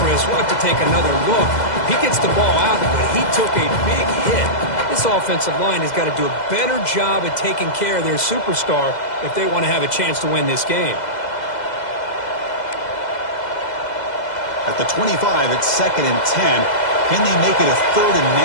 Chris. We'll have to take another look. He gets the ball out, but he took a big hit. This offensive line has got to do a better job at taking care of their superstar if they want to have a chance to win this game. At the 25, it's 2nd and 10. Can they make it a 3rd and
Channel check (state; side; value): late; right; 2.0 ms